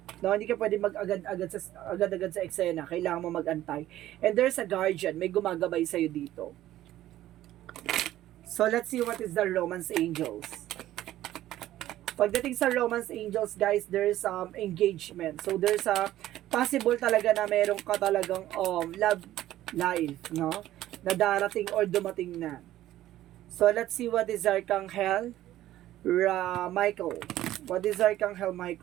No, hindi ka pwede agad-agad sa eksena. Kailangan mo mag-antay. And there's a guardian. May gumagabay sa'yo dito. So, let's see what is the romance angels. Pagdating sa romance angels, guys, there's engagement. So, there's a possible talaga na meron ka talagang love life, no? Na darating or dumating na. So, let's see what is Archangel Michael. What is Archangel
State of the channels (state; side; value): quieter; left; 13.9 dB